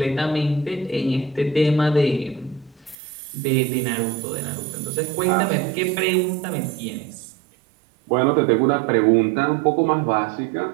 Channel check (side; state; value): left; drops out; at 3.0 s